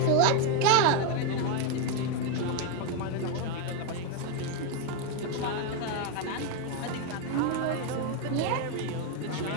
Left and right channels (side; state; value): both; different; correlation 0.01